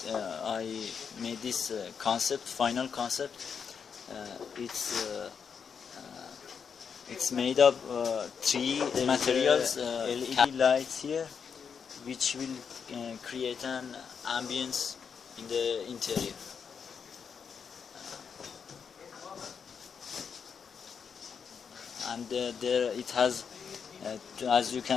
made this final concept. It's made of three materials, LED lights here, which will create an ambience in the interior. And there it has, as you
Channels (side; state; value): right; quieter; 6.6 dB